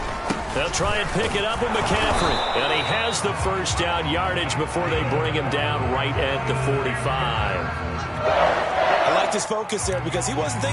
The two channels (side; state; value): both; identical; correlation 1.00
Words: They'll try and pick it up with McCaffrey. And he has the first down yardage before they bring him down right at the 45. I liked his focus there because he wasn't